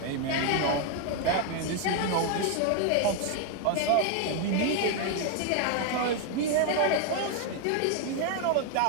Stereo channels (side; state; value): both; different; correlation 0.01